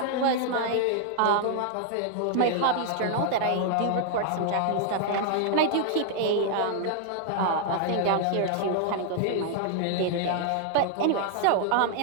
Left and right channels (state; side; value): different; both; correlation -0.01